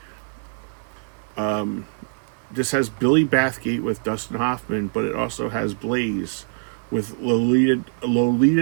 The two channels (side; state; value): left; silent; digital silence